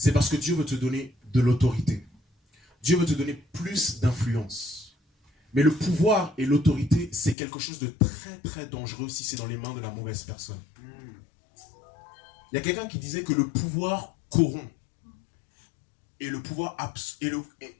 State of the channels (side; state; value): right; drops out; at 7.4 s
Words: parce que Dieu veut te donner de l'autorité. Dieu veut te donner plus d'influence. Mais le pouvoir et l'autorité, c'est quelque chose de très très dangereux si c'est dans les mains de la mauvaise personne. Il y a quelqu'un qui disait que le pouvoir corrompt. Et le pouvoir